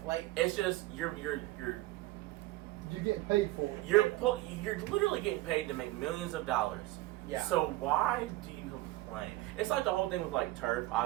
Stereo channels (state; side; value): quieter; left; 17.9 dB